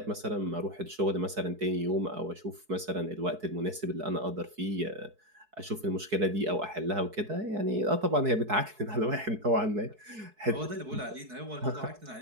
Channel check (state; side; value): late; left; 4.7 ms